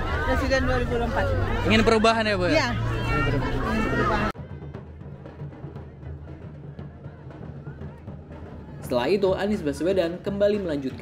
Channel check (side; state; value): both; identical; correlation 1.00